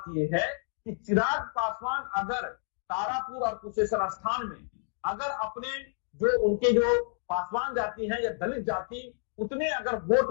यह है कि चिराग पासवान अगर तारापुर और कुशेश्वर स्थान में अगर अपने जो उनके जो पासवान जाति है या दलित जाति उतने अगर वोट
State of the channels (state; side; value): silent; right; digital silence